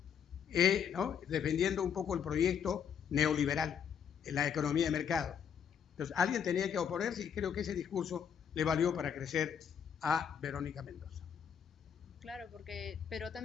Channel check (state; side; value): quieter; right; 7.8 dB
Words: ¿no?, defendiendo un poco el proyecto neoliberal en la economía de mercado. Entonces, alguien tenía que oponerse y creo que ese discurso le valió para crecer a Verónica Mendoza. Claro, pero